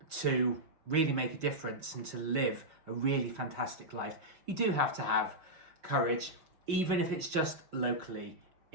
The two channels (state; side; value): late; left; 5.1 ms